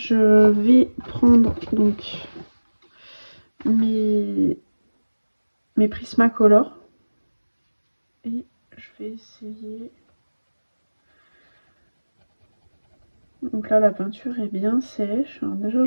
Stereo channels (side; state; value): both; inverted; correlation -1.00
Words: vais prendre donc mes Prismacolor et je vais essayer. Donc là la peinture est bien sèche. Alors déjà